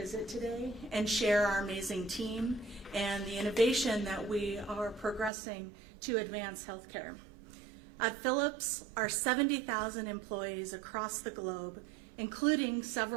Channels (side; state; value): left; drops out; at 5.3 s